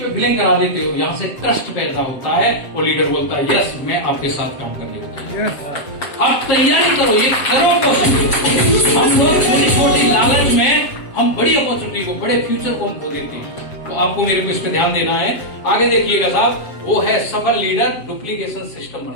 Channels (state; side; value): late; right; 7.2 ms